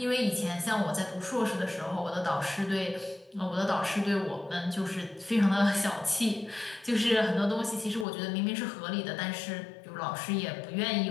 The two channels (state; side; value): drops out; right; at 8.1 s